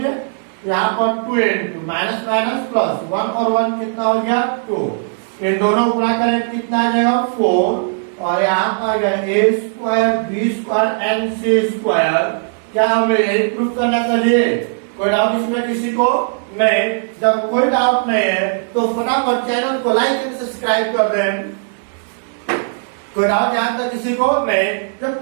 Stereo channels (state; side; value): silent; left; 68 dB below the other